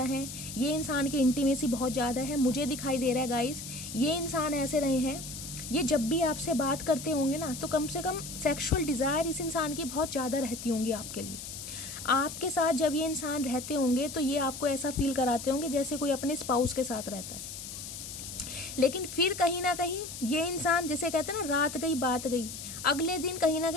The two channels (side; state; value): left; noise; hiss, 9 dB below the sound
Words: है, ये इंसान की इंटीमेसी बहुत ज़्यादा है, मुझे दिखाई दे रहा है गाइस। ये इंसान ऐसे रहे हैं, ये जब भी आपसे बात करते होंगे ना तो कम से कम सेक्सुअल डिज़ायर इस इंसान की बहुत ज़्यादा रहती होंगी आपके लिए। आपके साथ जब ये इंसान रहते होंगे तो ये आपको ऐसा फील कराते होंगे जैसे कोई अपने स्पाउस के साथ रहता है। लेकिन फिर कहीं ना कहीं ये इंसान, जैसे कहते हैं ना रात गई बात गई, अगले दिन कहीं ना